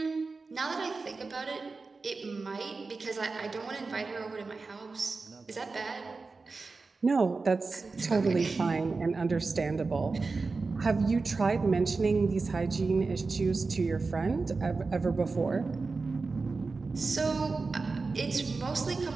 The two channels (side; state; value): left; quieter; 4.1 dB